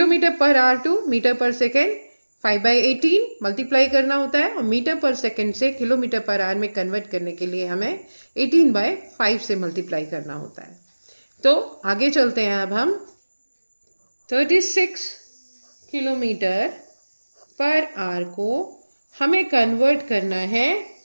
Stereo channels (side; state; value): both; inverted; correlation -1.00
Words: per hour to metre per second 5/18 multiply करना होता है, और मीटर पर सेकेंड से किलोमीटर पर आवर में कन्वर्ट करने के लिए हमें 18/5 से मल्टीप्लाई करना होता है। तो आगे चलते हैं। अब हम 36 किलोमीटर पर आवर को हमें कन्वर्ट करना है